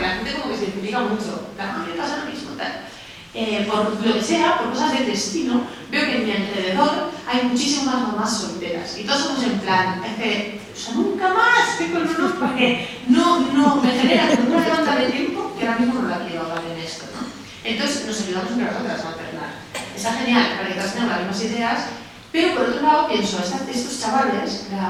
la gente como que se identifica mucho, la gente pasa lo mismo, tal. Por lo que sea, por cosas del destino, veo que en mi alrededor hay muchísimas mamás solteras y todos somos en plan, es que, o sea, nunca más tengo el honor porque no me genera una demanda de tiempo que ahora mismo no la quiero hablar en esto, ¿no? Entonces nos ayudamos entre nosotras a alternar. Está genial para que todas tengamos las mismas ideas, pero por otro lado pienso, estos chavales,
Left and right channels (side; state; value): both; identical; correlation 1.00